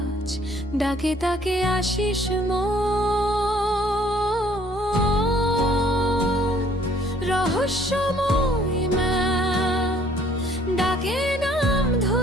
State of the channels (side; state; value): both; normal; correlation 0.60